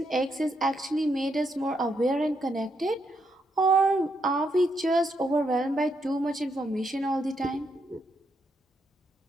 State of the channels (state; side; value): normal; both; correlation 0.79